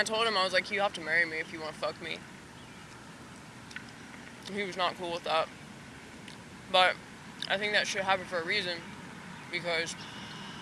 told him, I was like, you have to marry me if you want to fuck me. And he was not cool with that. But I think that should happen for a reason. Because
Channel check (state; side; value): identical; both; correlation 1.00